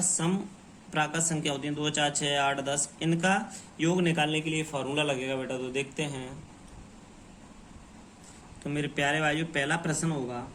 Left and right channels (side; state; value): both; identical; correlation 1.00